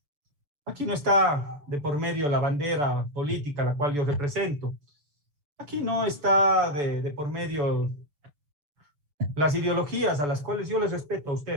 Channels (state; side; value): late; left; 6.9 ms